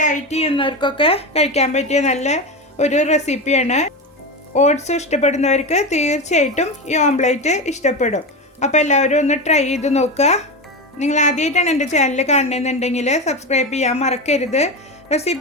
ചെയ്യുന്നവർക്കൊക്കെ കഴിക്കാൻ പറ്റിയ നല്ല ഒരു റെസിപ്പിയാണ്. ഓട്സ് ഇഷ്ടപ്പെടുന്നവർക്ക് തീർച്ചയായിട്ടും ഈ ഓംലെറ്റ് ഇഷ്ടപ്പെടും. അപ്പോൾ എല്ലാവരും ഒന്ന് ട്രൈ ചെയ്ത് നോക്കുക. നിങ്ങൾ ആദ്യമായിട്ടാണ് എൻ്റെ ചാനൽ കാണുന്നതെന്നുണ്ടെങ്കിൽ സബ്സ്ക്രൈബ് ചെയ്യാൻ മറക്കരുത്.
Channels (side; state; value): both; normal; correlation 0.19